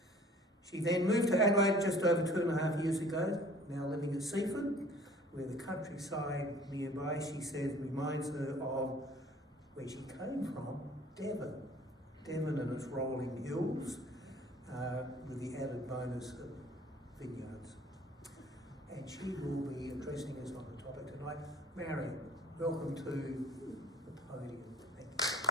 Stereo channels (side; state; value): both; normal; correlation 0.51